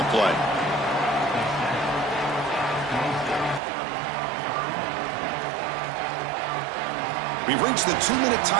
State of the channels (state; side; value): drops out; left; at 3.6 s